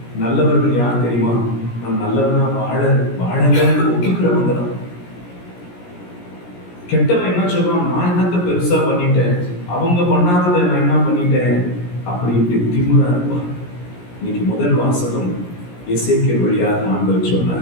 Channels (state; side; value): late; right; 17 ms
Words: நல்லவர்கள் யார் தெரியுமா? நான் நல்லவனா வாழல ஒப்புக்கிறவங்க தான். கெட்டவன் என்ன சொல்றான்? நான் என்னத்தை பெருசா பண்ணிட்டேன், அவங்க பண்ணாததை நான் என்ன பண்ணிட்டேன் அப்படின்ட்டு திமிரா இருப்பான். இன்னைக்கு முதல் வாசகம் எசேக்கியேல் வழியாக ஆண்டவர்